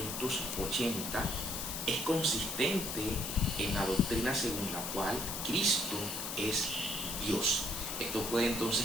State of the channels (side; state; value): left; noise; hiss, 4 dB below the sound